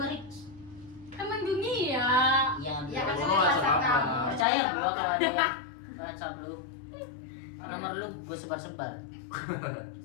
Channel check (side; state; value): right; drops out; at 4.5 s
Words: Rick. Emang dunia. Ya, Ya kan Obama bahasa WhatsApp apa? kamu. percaya gua kalau ada WhatsApp lu. Nomor lu gua sebar-sebar.